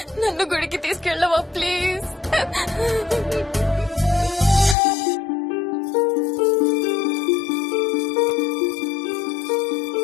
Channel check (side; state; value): right; drops out; at 4.8 s